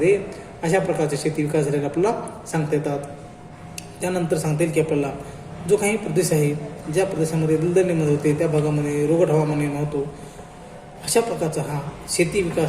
अशा प्रकारचे शेती विकास झालेला आपल्याला सांगता येतात. त्यानंतर सांगता येईल की आपल्याला जो काही प्रदेश आहे ज्या प्रदेशामध्ये दलदल निर्माण होते त्या भागामध्ये रोगट हवामान निर्माण होतो अशा प्रकारचा हा शेती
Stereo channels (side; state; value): both; identical; correlation 1.00